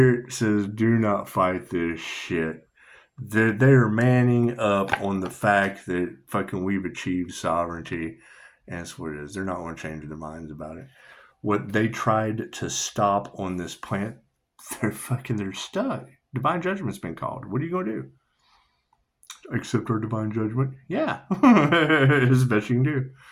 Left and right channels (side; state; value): both; identical; correlation 1.00